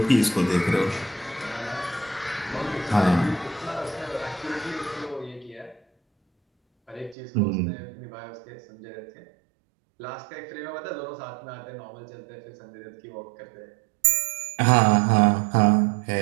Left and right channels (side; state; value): left; drops out; at 7.2 s